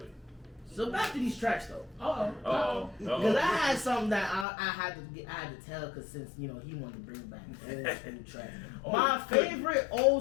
So back to these tracks though. Because I had something that I had to tell, because since he wanted to bring back old school tracks. My favorite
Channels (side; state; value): right; drops out; at 4.5 s